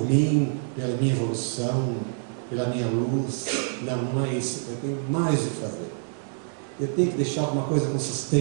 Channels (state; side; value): silent; left; 61 dB below the other